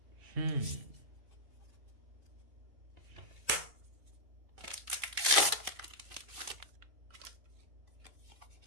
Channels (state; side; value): late; left; 2.5 ms